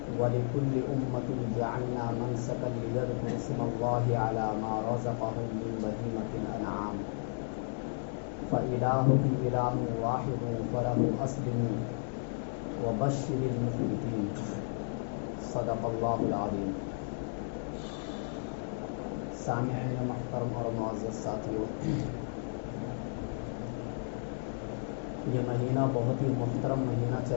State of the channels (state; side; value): silent; right; digital silence